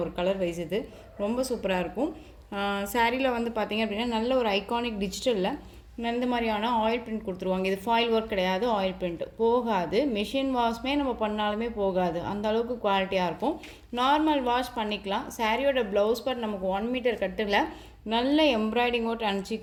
ஒரு கலர் வைஸ் இது ரொம்ப சூப்பராக இருக்கும். சாரியில் வந்து பார்த்திங்க அப்படின்னா நல்ல ஒரு ஐகானிக் டிஜிட்டலில் இந்த மாதிரியான ஆயில் பிரிண்ட் கொடுத்துருவாங்க. இது ஃபாயில் ஒர்க் கிடையாது, ஆயில் பிரிண்ட் போகாது. மிஷின் வாஷ்மே நம்ம பண்ணாலுமே போகாது, அந்த அளவுக்கு குவாலிட்டியாக இருக்கும். நார்மல் வாஷ் பண்ணிக்கலாம். சாரியோட ப்ளவுஸ் பார்ட் நமக்கு 1 மீட்டர் கட்டில் நல்ல embroidery work and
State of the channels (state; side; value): identical; both; correlation 1.00